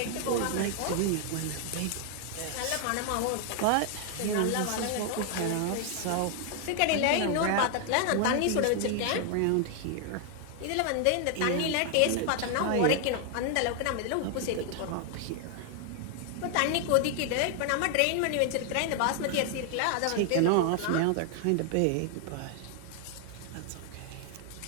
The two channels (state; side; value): different; both; correlation 0.00